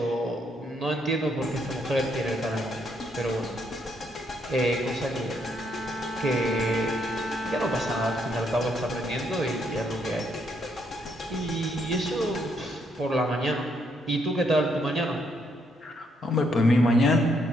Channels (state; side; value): normal; both; correlation 0.74